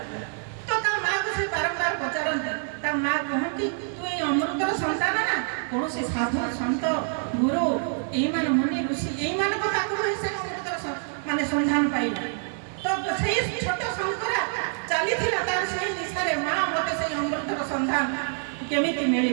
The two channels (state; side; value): silent; left; 61 dB below the other